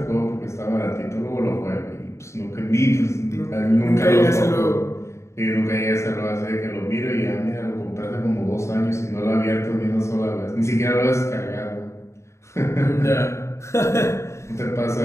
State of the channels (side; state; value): right; late; 0.14 ms